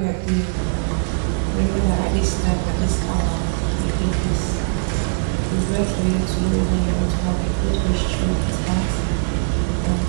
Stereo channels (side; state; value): left; silent; digital silence